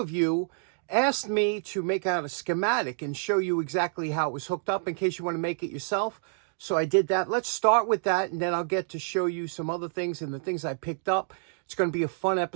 you asked me to make out a schematic and show you exactly how it was hooked up in case you want to make it yourself. So I did that. Let's start with that, and then I'll get to show you some other things and the things I picked up. It's going to be a fun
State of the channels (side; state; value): left; silent; digital silence